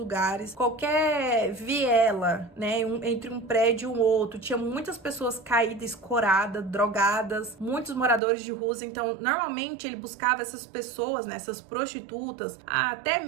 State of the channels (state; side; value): drops out; left; at 8.2 s